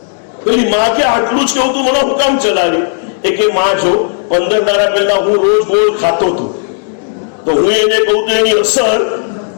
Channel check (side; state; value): right; silent; digital silence